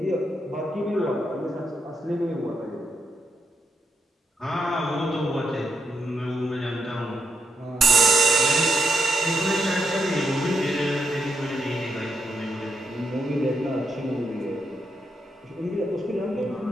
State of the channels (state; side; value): normal; both; correlation 0.82